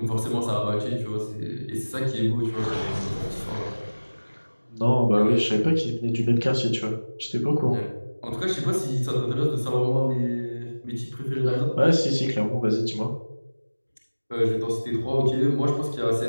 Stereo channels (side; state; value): both; inverted; correlation -1.00